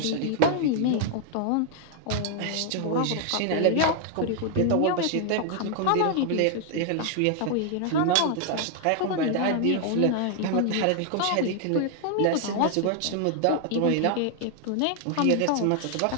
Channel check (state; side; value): different; both; correlation 0.00